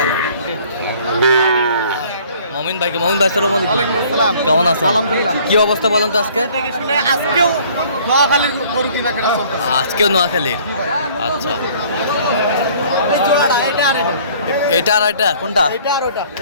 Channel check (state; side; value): inverted; both; correlation -0.55